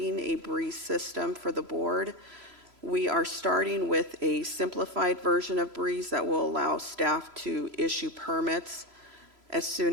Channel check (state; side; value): late; left; 3.0 ms